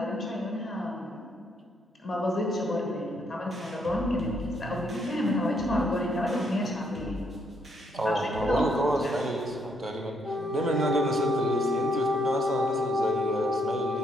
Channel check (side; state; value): both; normal; correlation 0.73